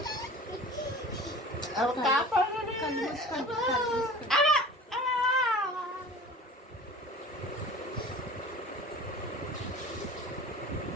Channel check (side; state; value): both; normal; correlation 0.41